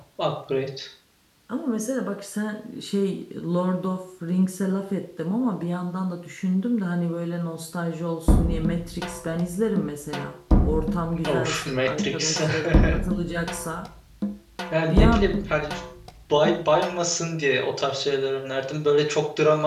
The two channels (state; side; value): identical; both; correlation 1.00